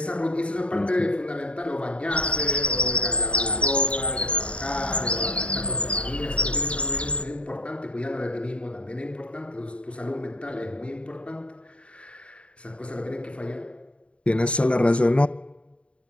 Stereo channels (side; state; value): right; late; 0.060 ms